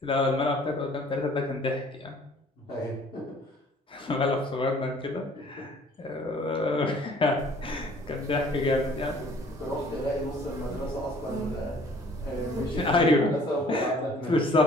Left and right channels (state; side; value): normal; both; correlation 0.55